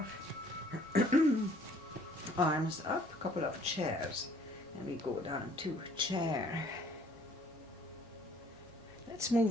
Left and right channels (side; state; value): both; normal; correlation 0.59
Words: arms up, couple of chairs, and we go down to chair. Let's